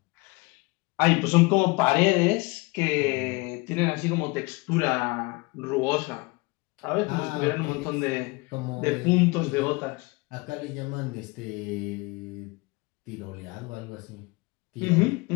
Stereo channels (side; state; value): right; quieter; 25.8 dB